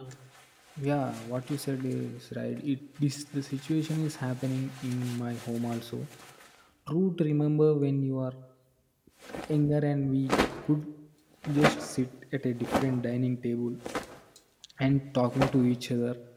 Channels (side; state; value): both; identical; correlation 1.00